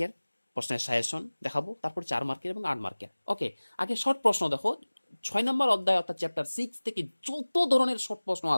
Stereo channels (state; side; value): inverted; both; correlation -1.00